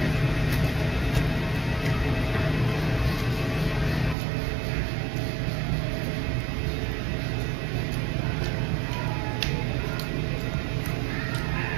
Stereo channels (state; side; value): drops out; left; at 4.2 s